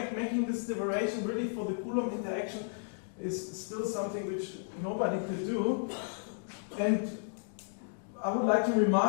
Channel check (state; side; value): silent; right; digital silence